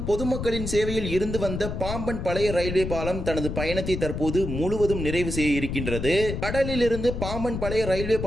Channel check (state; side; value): noise; left; rumble, 5 dB below the sound